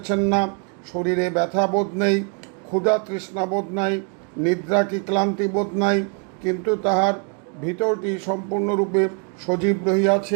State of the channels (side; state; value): left; quieter; 37.9 dB